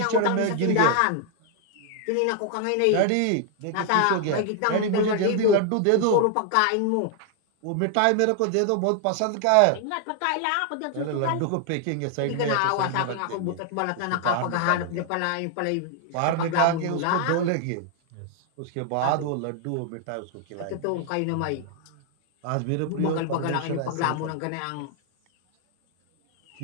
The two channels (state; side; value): different; both; correlation 0.00